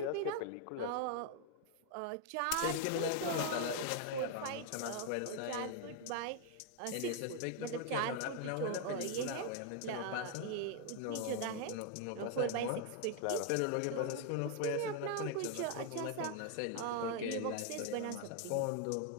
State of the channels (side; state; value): both; different; correlation 0.00